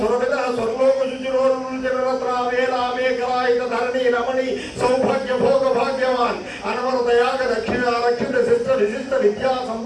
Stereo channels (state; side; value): identical; both; correlation 1.00